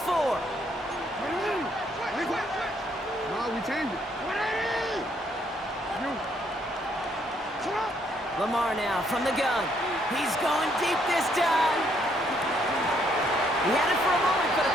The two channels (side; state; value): both; normal; correlation 0.70